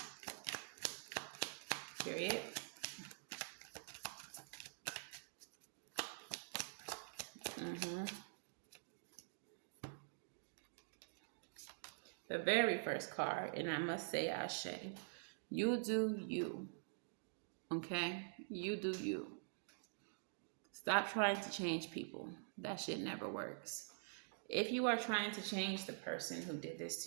Period. The very first card, and I must say Ashe, you do you, okay? You do you. Stop trying to change people. That shit never works. If you are trying to change the person who did this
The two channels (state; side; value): silent; left; digital silence